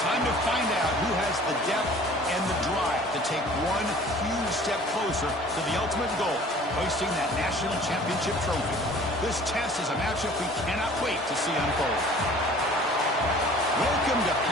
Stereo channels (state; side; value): normal; both; correlation 0.49